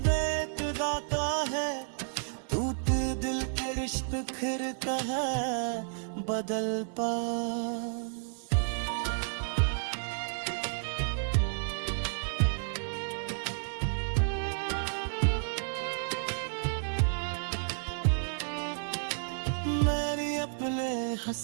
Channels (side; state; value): left; silent; digital silence